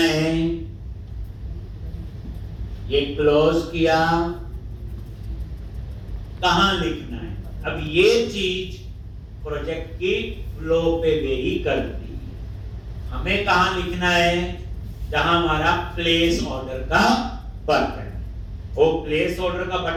ये क्लोज किया, कहां लिखना है? अब ये चीज प्रोजेक्ट की फ्लो पे वेरी करती है। हमें कहां लिखना है? जहां हमारा प्लेस ऑर्डर का बटन है। वो प्लेस ऑर्डर का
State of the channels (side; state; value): both; identical; correlation 1.00